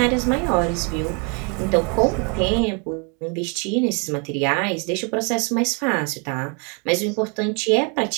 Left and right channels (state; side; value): quieter; left; 35.1 dB